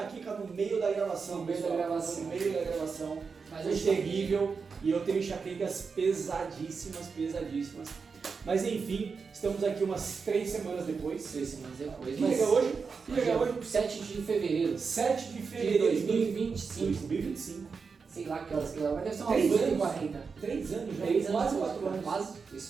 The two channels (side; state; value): left; quieter; 5.2 dB